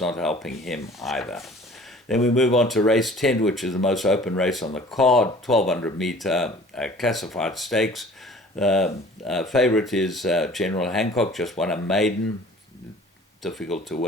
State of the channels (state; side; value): normal; both; correlation 0.48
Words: helping him either. Then we move on to race 10, which is the most open race on the card. 1200 meter classified stakes. Favourite is General Hancock, just won a maiden. Difficult to